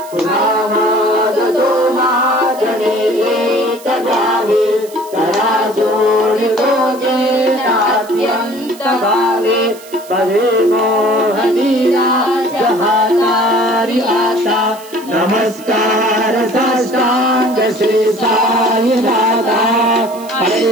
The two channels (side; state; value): right; noise; hiss, 20 dB below the sound